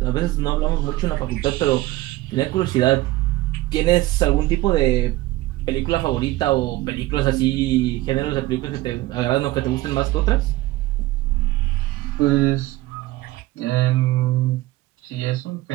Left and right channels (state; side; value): quieter; left; 17.7 dB